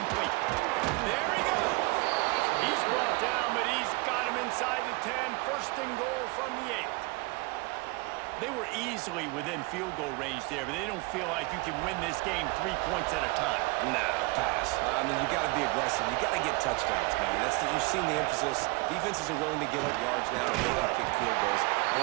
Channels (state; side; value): quieter; left; 25.6 dB